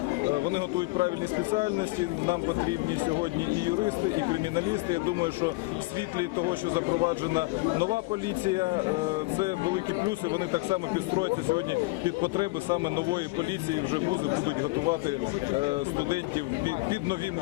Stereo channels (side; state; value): right; quieter; 23.6 dB